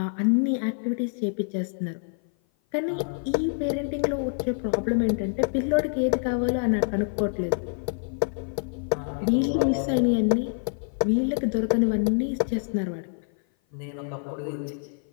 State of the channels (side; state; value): right; silent; 56 dB below the other